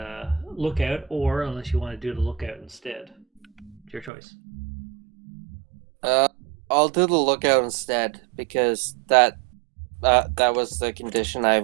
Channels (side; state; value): left; drops out; at 4.1 s